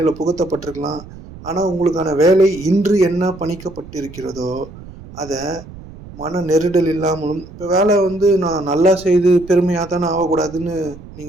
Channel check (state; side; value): noise; right; rumble, 17 dB below the sound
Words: புகுத்தப்பட்டிருக்கலாம். ஆனால் உங்களுக்கான வேலை இன்று என்ன பணிக்கப்பட்டிருக்கிறதோ அதை மன நெருடல் இல்லாமலும், இப்போ வேலை நான் நல்லா செய்து பெருமையாக தானே ஆகக்கூடாதுன்னு